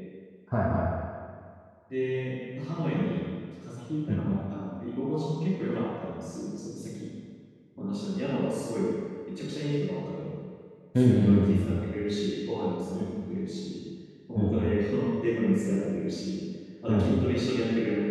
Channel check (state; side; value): identical; both; correlation 1.00